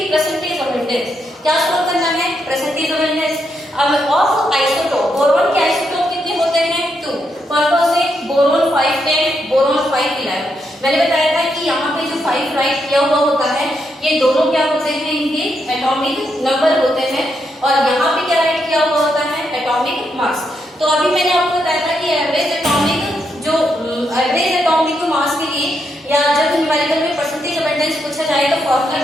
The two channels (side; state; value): both; normal; correlation 0.80